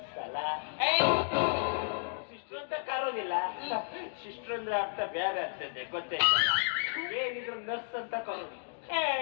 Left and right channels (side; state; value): right; silent; digital silence